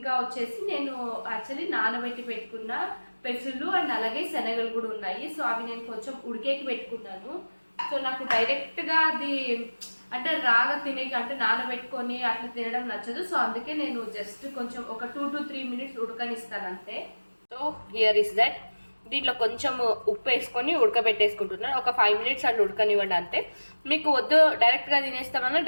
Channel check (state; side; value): inverted; both; correlation -1.00